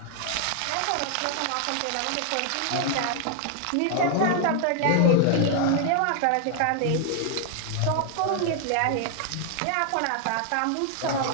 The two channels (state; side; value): different; both; correlation 0.00